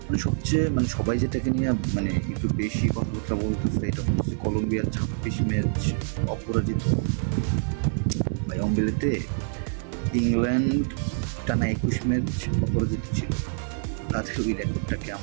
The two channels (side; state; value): left; silent; 56 dB below the other